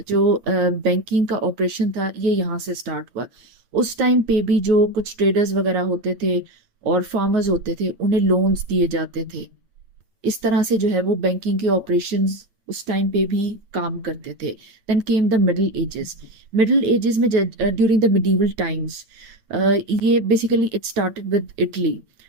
जो बैंकिंग का ऑपरेशन था ये यहाँ से स्टार्ट हुआ। उस टाइम पे भी जो कुछ ट्रेडर्स वगैरह होते थे और फार्मर्स होते थे उन्हें लोन्स दिए जाते थे। इस तरह से जो है वो बैंकिंग के ऑपरेशंस उस टाइम पे भी काम करते थे। Then came the middle ages. Middle ages में ड्यूरिंग द मिडीवल टाइम्स ये basically it started with Italy.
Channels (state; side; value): late; left; 8.9 ms